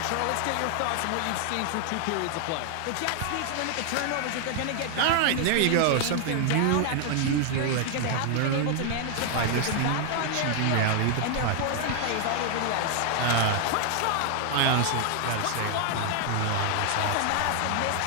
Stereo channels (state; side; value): different; both; correlation 0.00